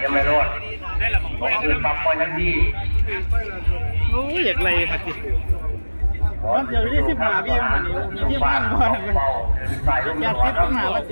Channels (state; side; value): inverted; both; correlation -1.00